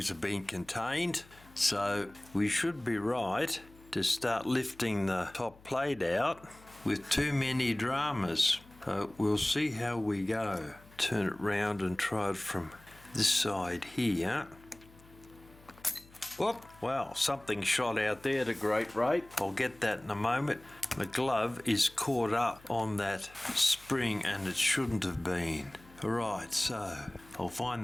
have been contained, so we should be right to start lifting the top plate out with too many dramas. So we'll see how we go. Turn it round and try it from this side here. Whoop! Wow, something shot out there at a great rate. I'll get that in a moment. The glove is caught up on that spring and it shouldn't have been. Alright, so I'll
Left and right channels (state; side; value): noise; left; hum, 24 dB below the sound